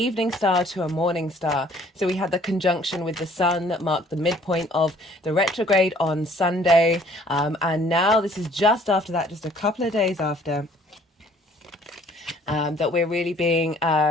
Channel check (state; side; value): normal; both; correlation 0.58